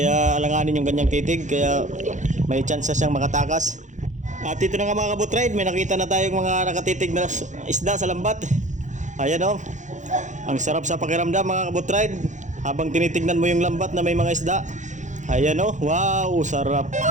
alanganin yung ganyang titig kaya may chance siyang makatakas. At ito na nga mga kabutride, may nakita na tayong mga nakatitig na isda sa lambat. Ayan oh. Ang sarap sa pakiramdam mga kabutride habang tinitignan mo yung lambat na may mga isda. Ayan oh, wow, sarap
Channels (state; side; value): late; left; 0.35 ms